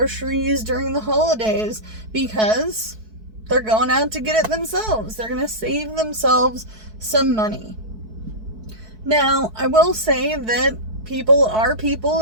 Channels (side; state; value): left; late; 4.6 ms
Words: during the holidays because they're going out to get it themselves. They're going to save themselves some money. Now, I will say that people are people,